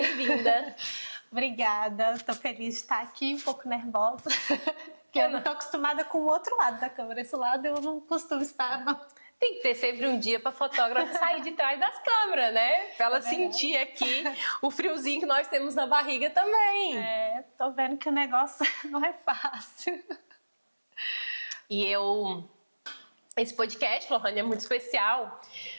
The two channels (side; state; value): both; inverted; correlation -1.00